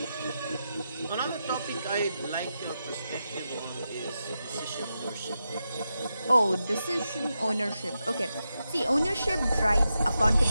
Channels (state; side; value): inverted; both; correlation -0.88